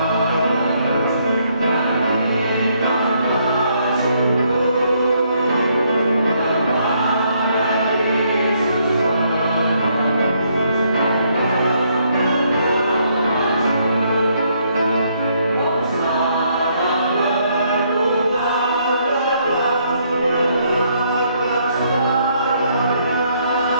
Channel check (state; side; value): inverted; both; correlation -0.71